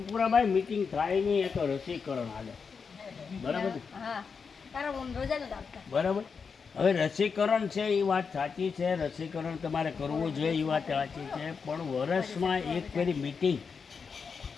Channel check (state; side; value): quieter; right; 5.6 dB